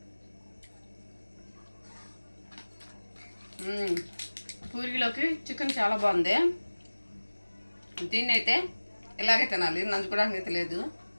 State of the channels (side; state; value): both; inverted; correlation -1.00